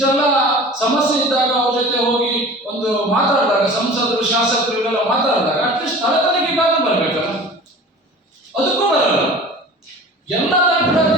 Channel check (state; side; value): normal; both; correlation 0.40